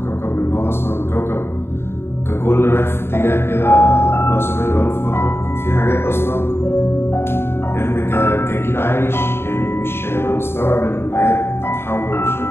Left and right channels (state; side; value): late; right; 0.11 ms